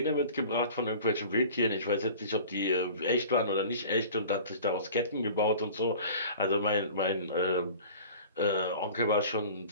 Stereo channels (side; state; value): both; inverted; correlation -0.42